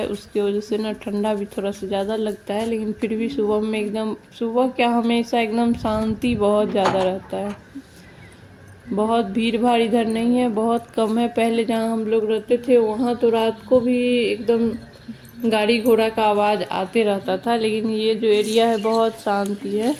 उसकी वजह से ना ठंडा भी थोड़ा सा ज़्यादा लगता है, लेकिन फिर भी सुबह में एकदम, सुबह क्या हमेशा एकदम शांति बहुत ज़्यादा रहता है। बहुत भीड़ भाड़ इधर नहीं है, बहुत कम है। पहले जहाँ हम लोग रहते थे वहाँ तो रात को भी एकदम गाड़ी घोड़ा का आवाज़ आते रहता था, लेकिन ये जो एरिया है बहुत शांति है।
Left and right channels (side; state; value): both; identical; correlation 1.00